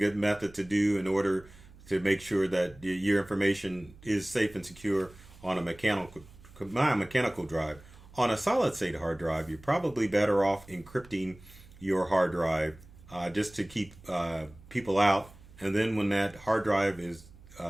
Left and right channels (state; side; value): noise; right; hum, 22 dB below the sound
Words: method to do in order to make sure that your information is safe and secure on a mechanical drive. On a solid state hard drive, you're probably better off encrypting your hard drive just to keep people out. And then when that hard drive is